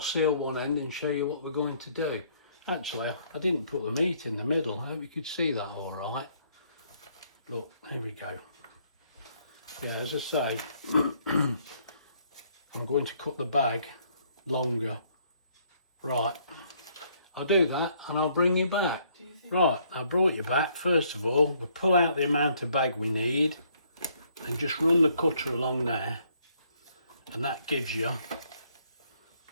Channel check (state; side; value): inverted; both; correlation -0.67